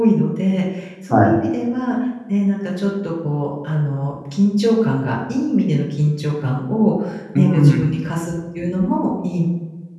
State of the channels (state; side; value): identical; both; correlation 1.00